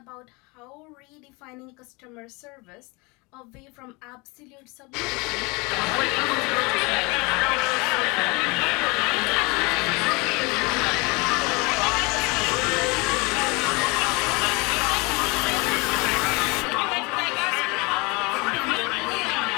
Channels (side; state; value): right; quieter; 27.0 dB